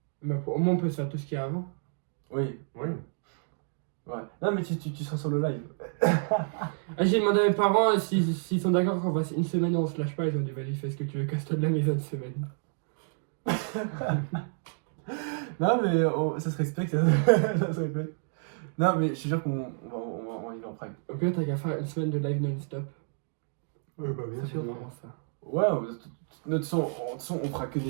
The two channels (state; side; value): silent; left; 58 dB below the other